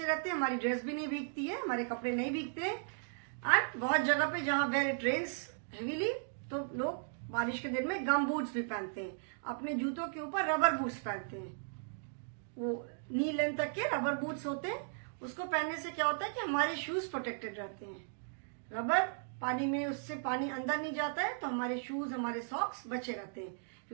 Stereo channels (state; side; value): silent; left; digital silence